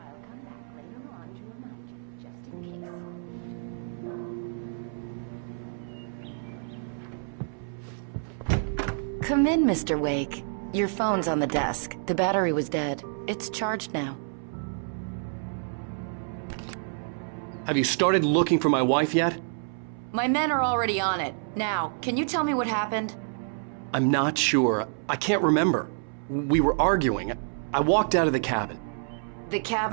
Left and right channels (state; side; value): silent; left; 59 dB below the other